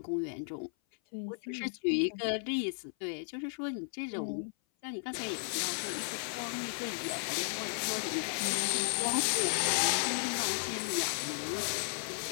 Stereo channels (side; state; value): right; silent; 55 dB below the other